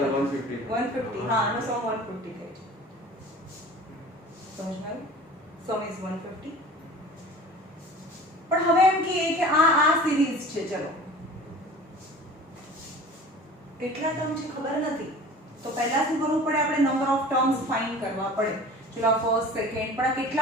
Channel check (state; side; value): normal; both; correlation 0.41